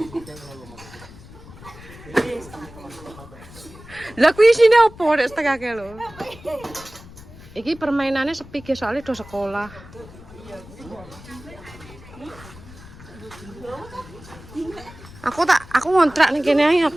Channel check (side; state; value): left; noise; rumble, 18 dB below the sound